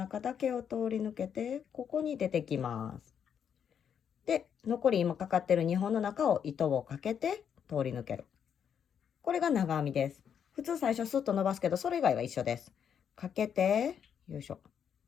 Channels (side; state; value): right; quieter; 8.0 dB